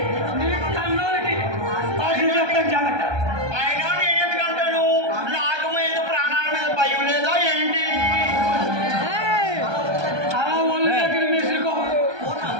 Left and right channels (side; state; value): left; late; 1.2 ms